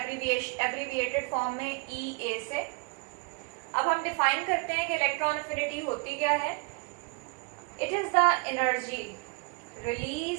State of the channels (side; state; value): left; quieter; 30.8 dB